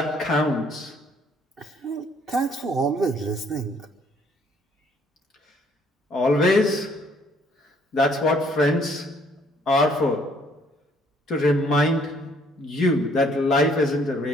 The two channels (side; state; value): both; normal; correlation 0.63